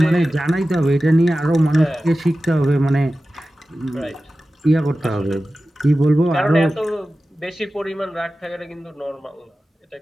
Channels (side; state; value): both; normal; correlation 0.95